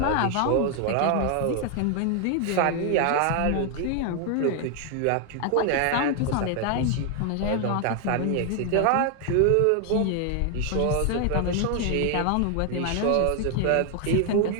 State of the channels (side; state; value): both; different; correlation 0.00